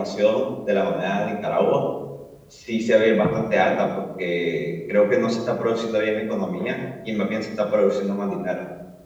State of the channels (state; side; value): identical; both; correlation 1.00